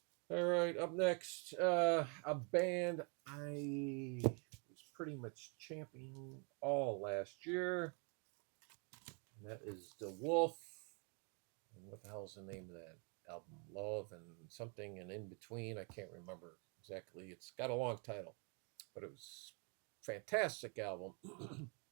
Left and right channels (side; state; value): left; quieter; 36.9 dB